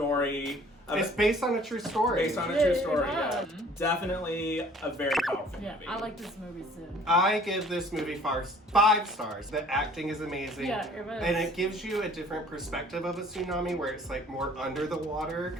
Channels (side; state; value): both; normal; correlation 0.53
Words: It's based on a true story. Based on a true story, yeah. Definitely a very powerful movie. I like this movie too. I give this movie 5 stars. The acting is amazing. Yeah, it was. And it gives you a different perspective of a tsunami where it's like more under the water.